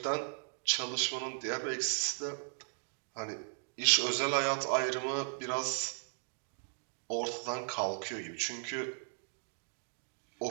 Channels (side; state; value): left; silent; digital silence